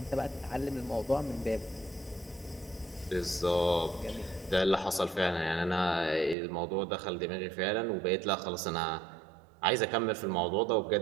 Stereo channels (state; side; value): drops out; left; at 6.4 s